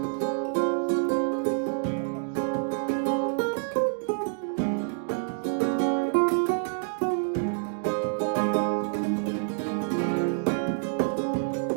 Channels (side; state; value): left; silent; digital silence